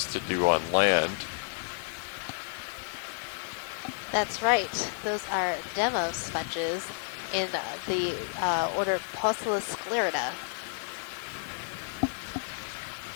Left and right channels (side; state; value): right; silent; digital silence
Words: to do on land. That's right. Those are demo sponges in the order Poecilosclerida.